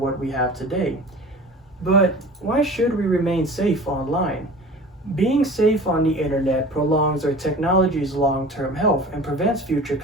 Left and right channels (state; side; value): normal; both; correlation 0.40